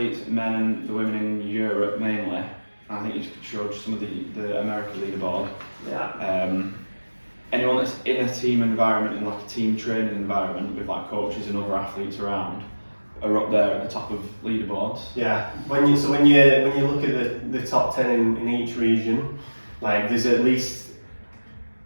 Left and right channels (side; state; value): both; inverted; correlation -1.00